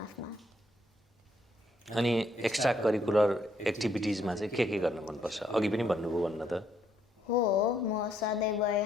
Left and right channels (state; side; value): normal; both; correlation 0.72